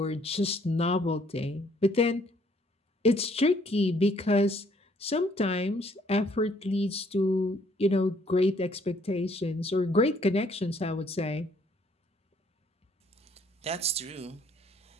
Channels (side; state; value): both; normal; correlation 0.64